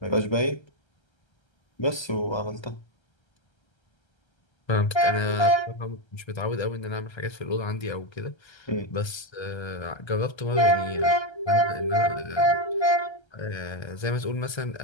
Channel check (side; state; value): right; late; 1.3 ms